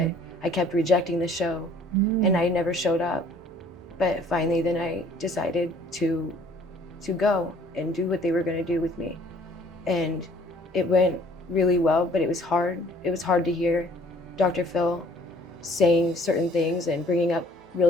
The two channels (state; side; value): normal; both; correlation 0.56